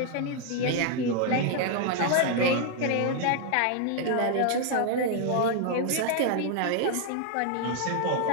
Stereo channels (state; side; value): different; both; correlation 0.00